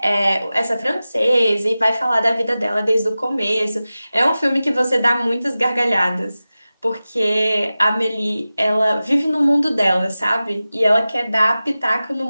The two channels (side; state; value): both; inverted; correlation -0.96